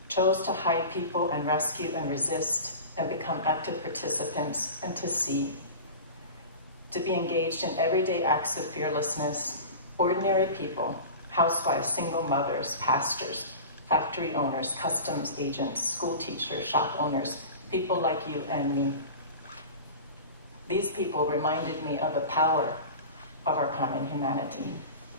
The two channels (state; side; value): inverted; both; correlation -0.33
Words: chose to hide people and rescue and resist and become active participants and to see, to be engaged in everyday acts of fearlessness, ordinary people, housewives, single mothers, pastors, factory owners, customs agents, school teachers, shop owners, people like you and me. These people reminded me of the power of our common humanity.